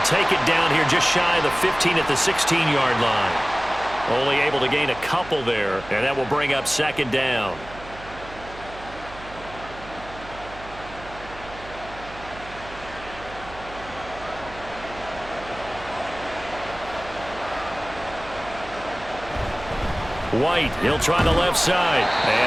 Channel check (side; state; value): right; noise; hum, 16 dB below the sound